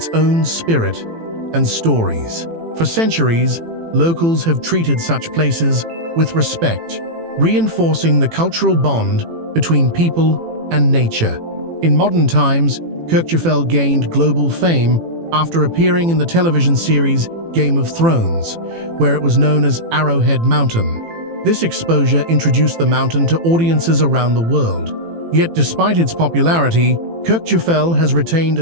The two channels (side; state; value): left; late; 18 ms